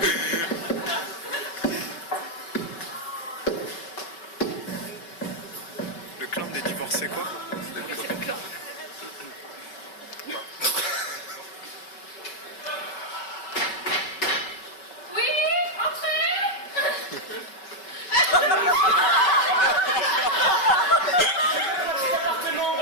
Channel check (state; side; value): late; right; 5.3 ms